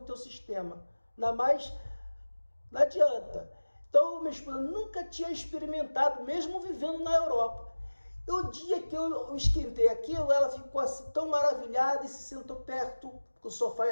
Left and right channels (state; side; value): inverted; both; correlation -1.00